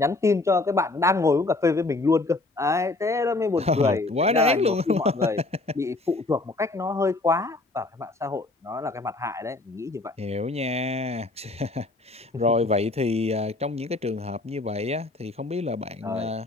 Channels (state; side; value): quieter; right; 3.1 dB